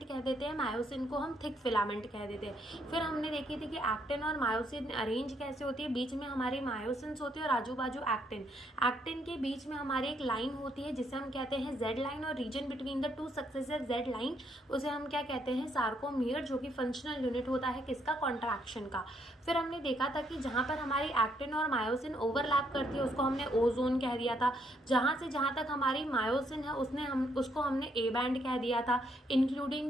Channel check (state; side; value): normal; both; correlation 0.72